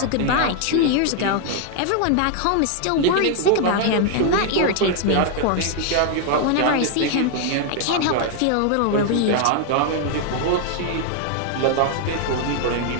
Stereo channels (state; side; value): different; both; correlation 0.00